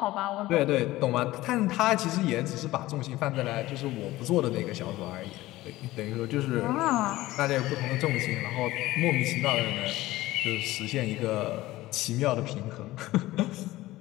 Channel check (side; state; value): right; quieter; 17.3 dB